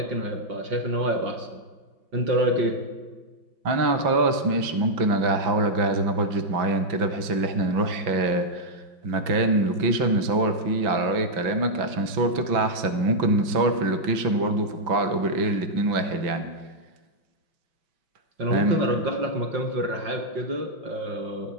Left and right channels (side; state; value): left; late; 6.0 ms